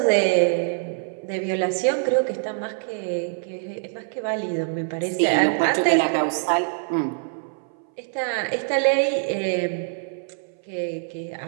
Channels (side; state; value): left; silent; 60 dB below the other